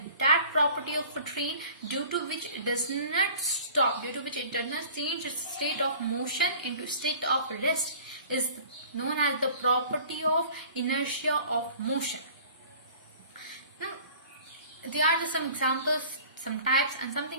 that property of a train, due to which it does not stop, due to which it does not change its state of motion into state of rest, is known as the property of inertia of motion. Now, there are some examples, some types and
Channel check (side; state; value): both; inverted; correlation -0.47